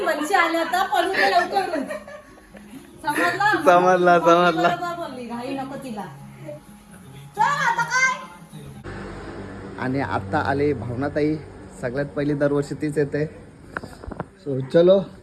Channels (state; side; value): identical; both; correlation 1.00